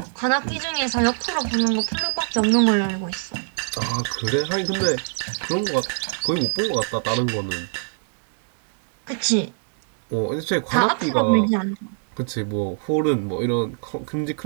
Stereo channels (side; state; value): left; silent; digital silence